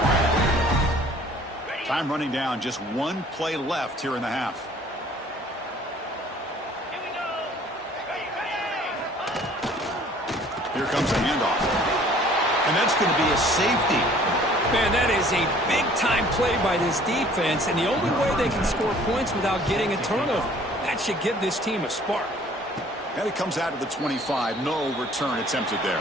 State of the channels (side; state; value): both; normal; correlation 0.54